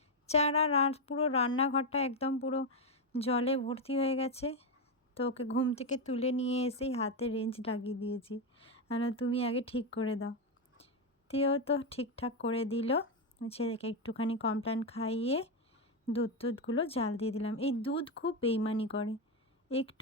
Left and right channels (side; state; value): both; normal; correlation 0.07